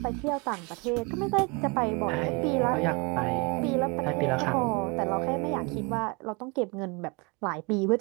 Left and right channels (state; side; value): quieter; left; 29.4 dB